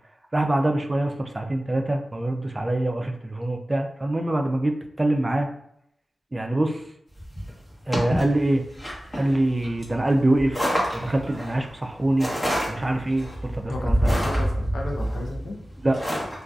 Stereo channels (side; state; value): both; normal; correlation 0.97